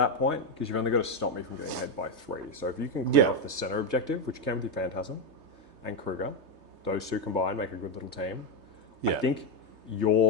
point because you've only got to stop me from getting ahead by 3. So if you can clear off the center objective, which can be Phantasm and Kruger, those two combined make a good little team. I think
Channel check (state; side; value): late; left; 3.3 ms